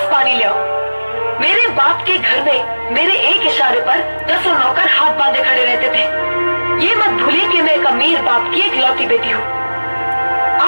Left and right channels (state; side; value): inverted; both; correlation -1.00